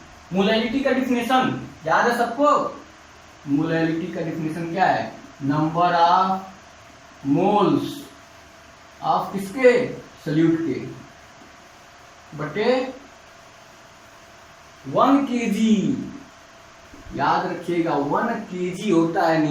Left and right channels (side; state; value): both; identical; correlation 1.00